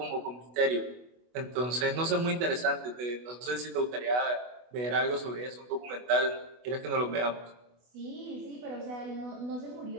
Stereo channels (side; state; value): left; late; 24 ms